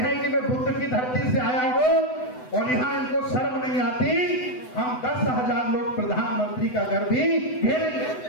कि मैं बुद्ध की धरती से आया हूं और यहाँ इनको शर्म नहीं आती, हम 10,000 लोग प्रधानमंत्री का घर भी घेरेंगे।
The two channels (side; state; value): right; late; 8.0 ms